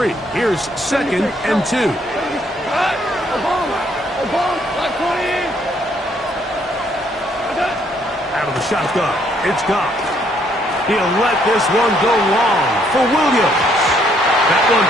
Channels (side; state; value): both; normal; correlation 0.68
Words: here's 2nd and 2. Out of the shotgun, it's Goff. He'll let this one go long for Williams. That one